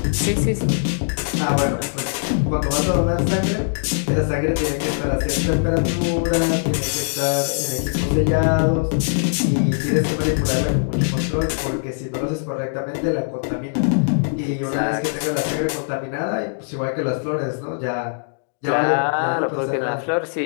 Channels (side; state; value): right; silent; digital silence